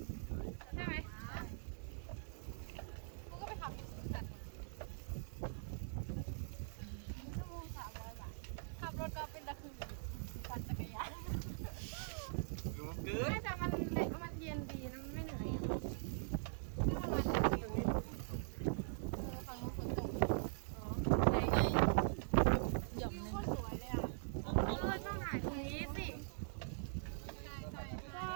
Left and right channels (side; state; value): left; silent; digital silence